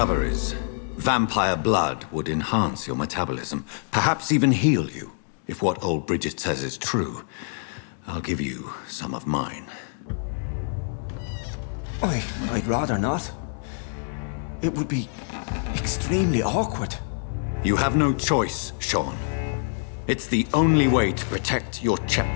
Vampire blood would enhance your metabolism, perhaps even heal you. If what old Bridget says is true, I'll give you some of mine. I'd rather not. It would be extremely awkward. You have no choice, Sean. It's the only way to protect your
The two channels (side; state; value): right; silent; digital silence